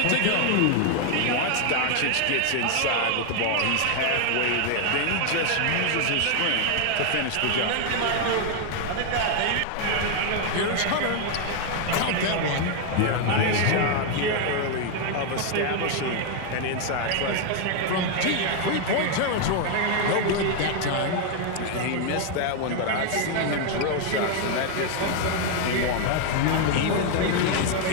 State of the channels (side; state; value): both; different; correlation 0.00